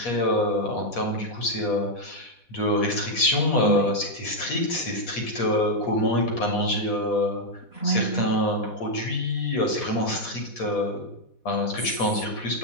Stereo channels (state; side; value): late; right; 4.1 ms